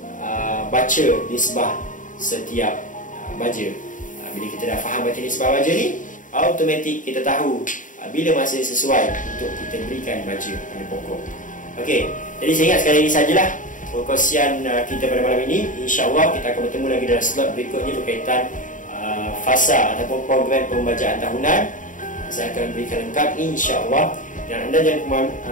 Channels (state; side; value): late; right; 0.38 ms